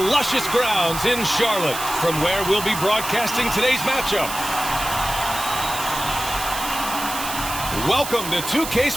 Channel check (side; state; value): right; noise; hiss, 7 dB below the sound